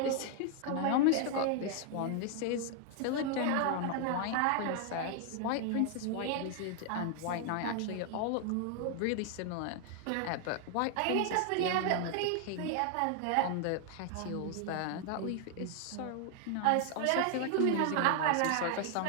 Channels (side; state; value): both; different; correlation 0.00